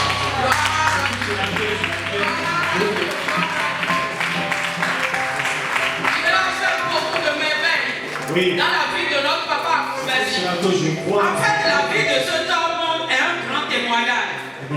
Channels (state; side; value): identical; both; correlation 1.00